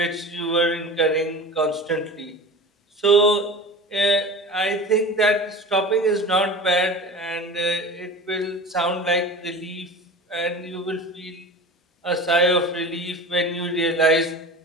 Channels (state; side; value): normal; both; correlation 0.35